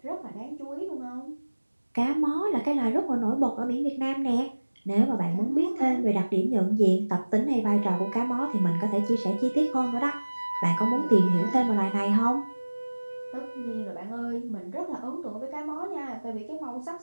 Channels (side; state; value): both; inverted; correlation -1.00